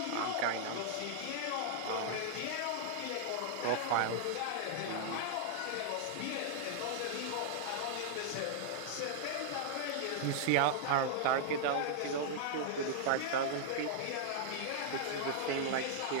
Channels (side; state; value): both; different; correlation -0.01